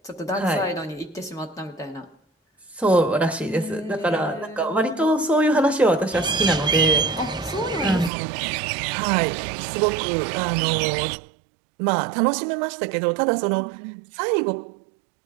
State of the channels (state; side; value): drops out; left; at 8.1 s